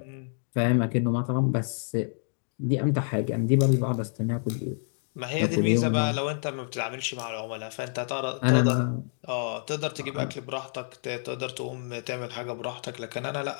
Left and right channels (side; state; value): right; silent; digital silence